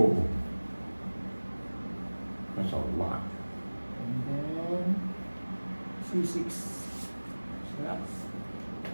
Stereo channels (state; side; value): inverted; both; correlation -1.00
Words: That's a lot. And then C6. Relax.